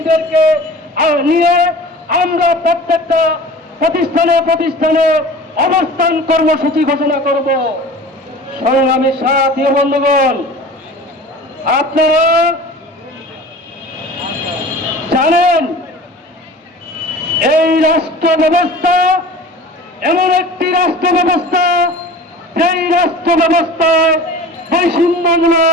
নিয়ে আমরা প্রত্যেকটা প্রতিষ্ঠানে প্রতিষ্ঠানে অবস্থান কর্মসূচি ঘোষণা করব। সংগ্রামী সাথী বন্ধুগণ, আপনারা জানেন এই রাষ্ট্র ব্যবস্থা এমন একটি রাষ্ট্র ব্যবস্থা, যেই রাষ্ট্র ব্যবস্থায়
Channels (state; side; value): normal; both; correlation 0.40